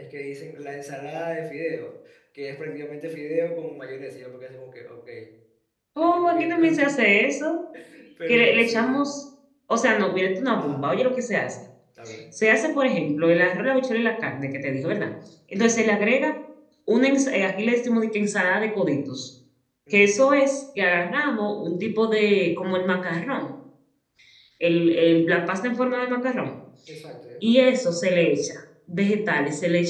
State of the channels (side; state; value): both; identical; correlation 1.00